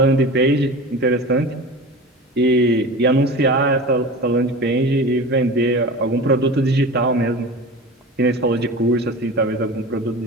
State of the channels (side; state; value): both; normal; correlation 0.33